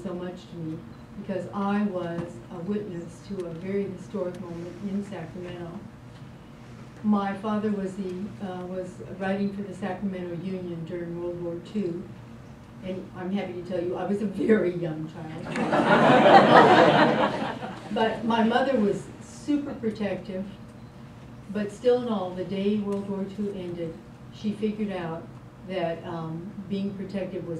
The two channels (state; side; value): identical; both; correlation 1.00